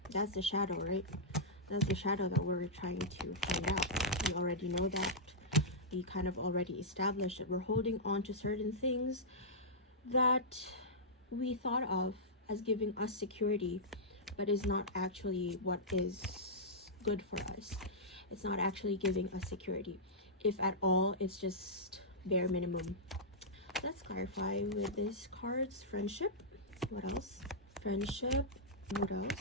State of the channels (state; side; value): normal; both; correlation -0.11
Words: that's the shadow, right? That's the shadow that we're trying to find out. We already know that. We kind of already established that we're holding on to certain things that we thought of as giving us security, but is not actually what is good for us. It's not actually giving us security. If at all, it's just bare minimum. Let's clarify with these cards. Friendship. What else? Friendship. What